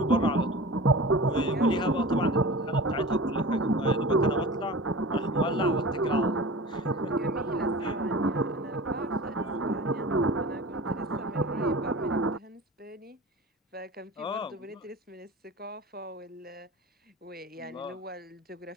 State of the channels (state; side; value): normal; both; correlation 0.36